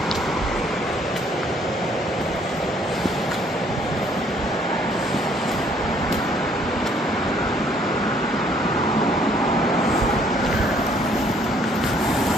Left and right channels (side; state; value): both; normal; correlation 0.63